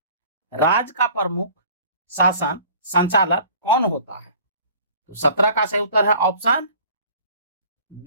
राज्य का प्रमुख शासन संचालक कौन होता है। तो 17 का सही उत्तर है ऑप्शन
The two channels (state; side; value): inverted; both; correlation -0.49